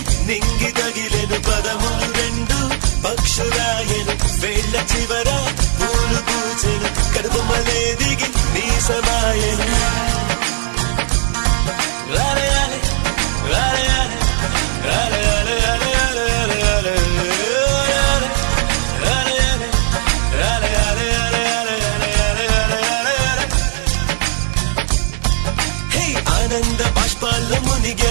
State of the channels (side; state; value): left; silent; digital silence